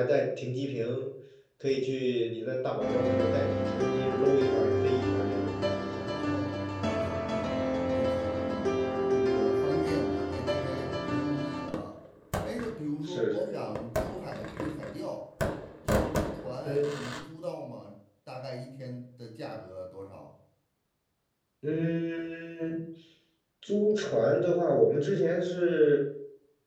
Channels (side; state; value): both; identical; correlation 1.00